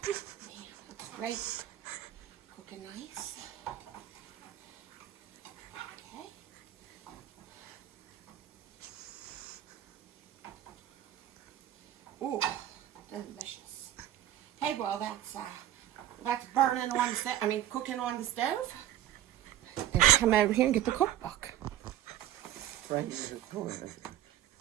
Man, looks great. Cooking nice. Okay. Ooh, delicious. Okay, well that's burning on the stove. I mean, cooking on the stove. And come over here and get the cookbook. Right in the corner.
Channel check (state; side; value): quieter; left; 12.7 dB